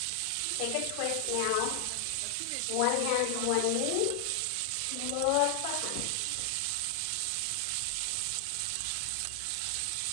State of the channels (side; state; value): both; different; correlation 0.00